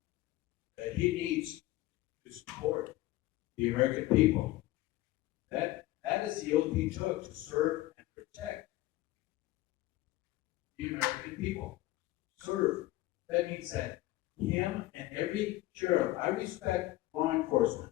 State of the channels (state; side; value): quieter; right; 17.1 dB